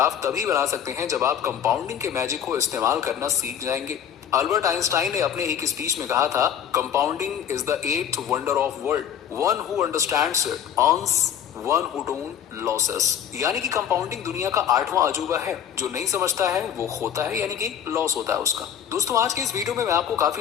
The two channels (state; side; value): quieter; right; 9.2 dB